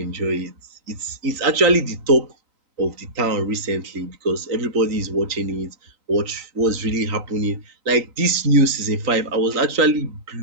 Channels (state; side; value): late; left; 3.9 ms